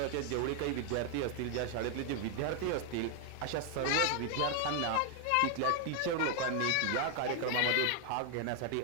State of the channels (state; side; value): different; both; correlation 0.00